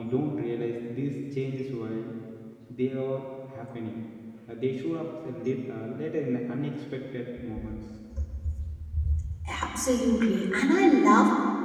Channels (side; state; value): both; identical; correlation 1.00